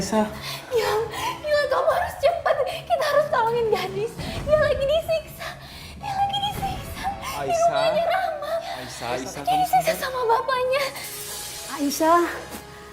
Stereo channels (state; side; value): identical; both; correlation 1.00